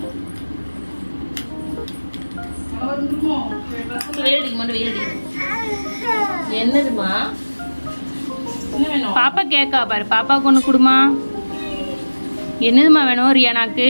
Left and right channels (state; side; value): inverted; both; correlation -1.00